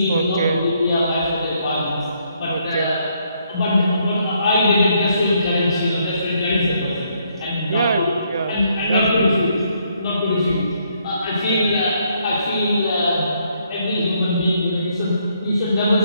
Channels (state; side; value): inverted; both; correlation -0.72